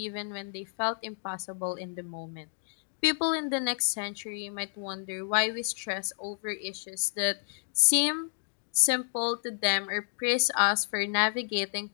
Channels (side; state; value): right; silent; 57 dB below the other